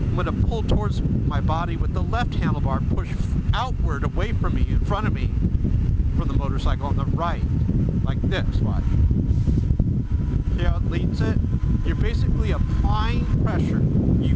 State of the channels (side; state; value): both; identical; correlation 1.00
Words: going to pull towards my body with the left handlebar, push outward away from me, in front of me, from the motorcycle on the right, like this, watch. See how it leans it? You're basically applying pressure.